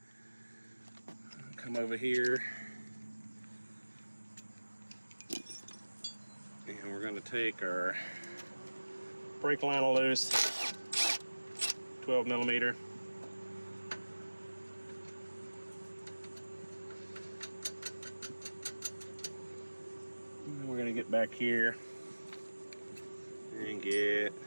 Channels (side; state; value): both; inverted; correlation -1.00